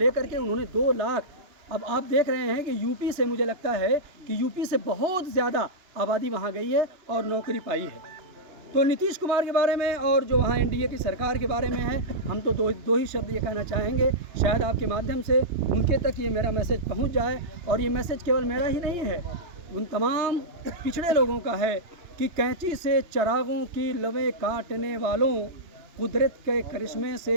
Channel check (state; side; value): late; left; 2.9 ms